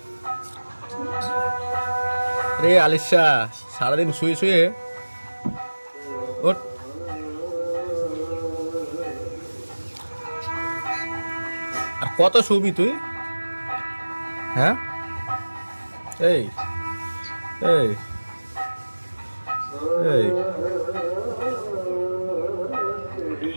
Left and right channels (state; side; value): inverted; both; correlation -1.00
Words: রে আলিশা সারাদিন শুয়ে শুয়ে ওঠ। আর কত শুবি তুই? হ্যাঁ এই এই এই